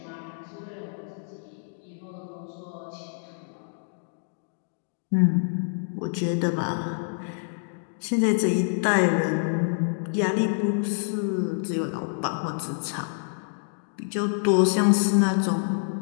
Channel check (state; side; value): silent; right; digital silence